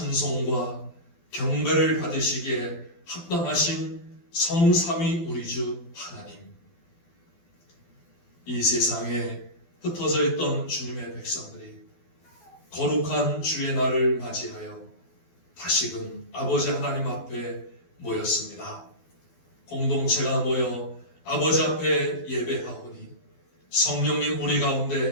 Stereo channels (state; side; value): late; right; 12 ms